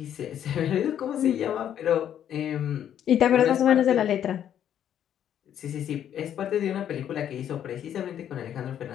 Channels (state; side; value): quieter; right; 10.0 dB